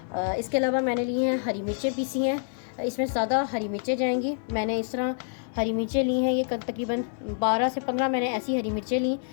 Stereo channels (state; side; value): silent; right; 60 dB below the other